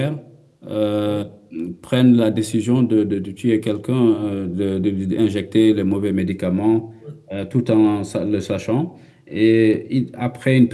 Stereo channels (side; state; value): both; identical; correlation 1.00